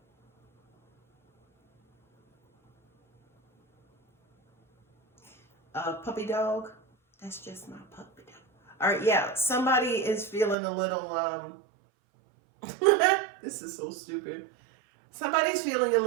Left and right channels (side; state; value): left; drops out; at 10.6 s